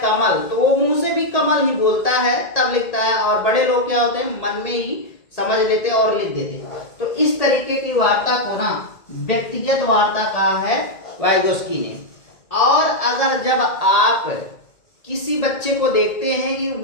तो वो मुंह से भी कमल ही बोलता है तब लिखता है। और बड़े लोग क्या होते हैं, मन में ही समझ लेते और लिख देते। तो इस तरीके की वार्ता को ना व्यक्तिगत वार्ता कहा है वाइगोस्की ने। और अगर जब आप किसी बच्चे को देखते हैं कि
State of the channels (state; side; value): late; right; 1.8 ms